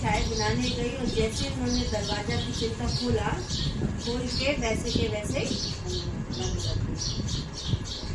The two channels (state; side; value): identical; both; correlation 1.00